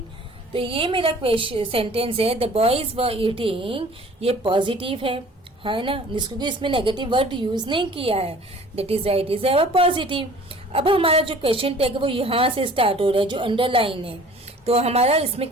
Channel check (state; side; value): normal; both; correlation 0.49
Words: तो ये मेरा क्वेश्चन सेंटेंस है, द बॉयज वर ईटिंग, ये पॉजिटिव है ना, क्योंकि इसमें नेगेटिव वर्ड यूज नहीं किया है, that is right, is our positive. अब हमारा जो क्वेश्चन टैग है वो यहाँ से स्टार्ट हो रहा है, जो अंडरलाइन है। तो हमारा इसमें